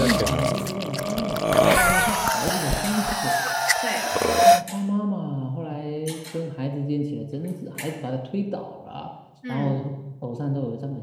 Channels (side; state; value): both; identical; correlation 1.00